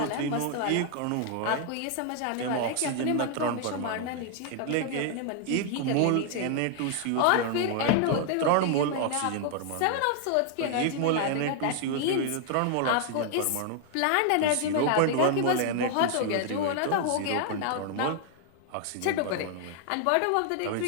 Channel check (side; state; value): both; different; correlation 0.00